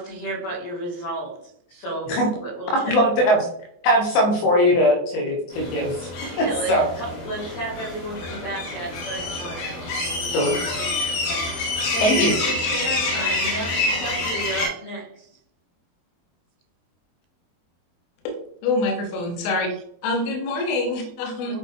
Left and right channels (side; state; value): right; late; 23 ms